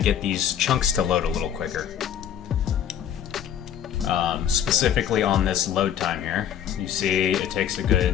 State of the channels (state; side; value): quieter; right; 9.5 dB